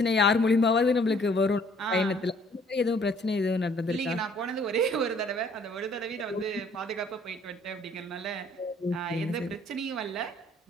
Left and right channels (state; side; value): normal; both; correlation 0.60